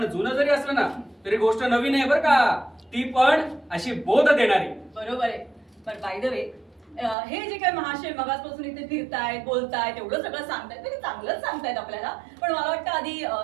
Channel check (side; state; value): left; drops out; at 7.2 s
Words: जुनं जरी असलं ना तरी गोष्ट नवीन आहे बरं का. ती पण अशी बोध देणारी. बरोबर आहे. पण बाय द वे, हे जे काही महाशय मगासपासून इथे फिरतायत बोलतायत एवढं सगळं सांगतायत ते चांगलंच सांगतायत आपल्याला, पण मला वाटतं आधी